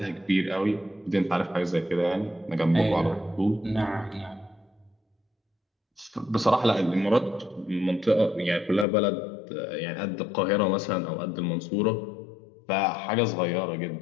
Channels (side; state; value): right; drops out; at 8.8 s